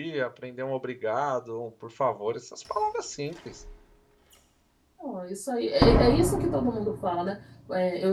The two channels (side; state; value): both; identical; correlation 1.00